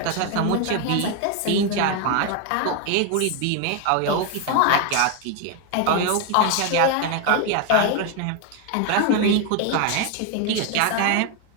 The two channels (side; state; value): both; different; correlation 0.01